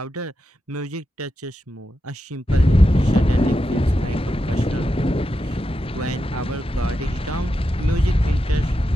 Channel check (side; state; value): both; normal; correlation 0.88